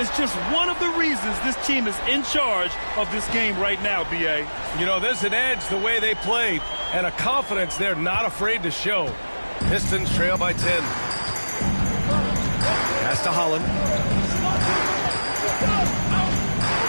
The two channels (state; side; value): inverted; both; correlation -1.00